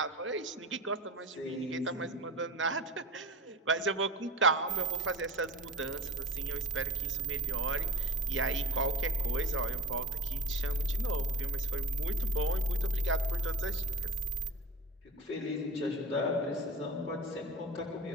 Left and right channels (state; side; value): normal; both; correlation 0.32